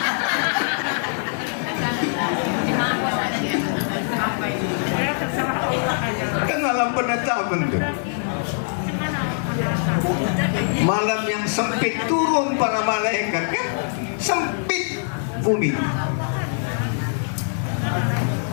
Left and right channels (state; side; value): silent; right; digital silence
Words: Kan malam penetapan tuh. Malam yang sempit turun para malaikat kan? Sempit bumi.